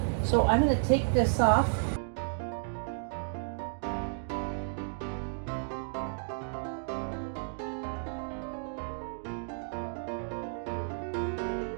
So I'm going to take this off.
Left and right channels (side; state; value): left; silent; digital silence